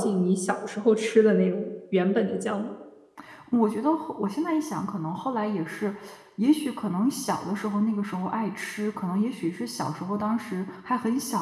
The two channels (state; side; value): identical; both; correlation 1.00